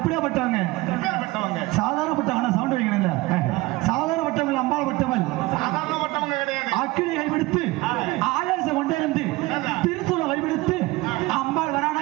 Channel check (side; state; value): left; quieter; 20.5 dB